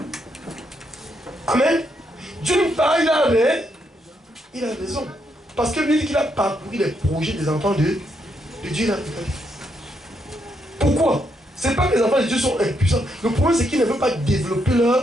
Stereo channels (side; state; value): both; normal; correlation 0.78